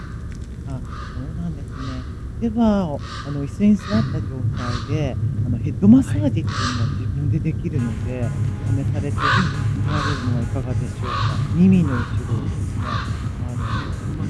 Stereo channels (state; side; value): identical; both; correlation 1.00